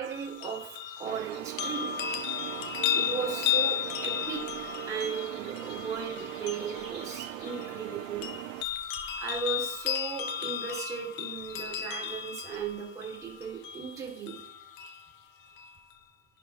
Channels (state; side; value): normal; both; correlation -0.03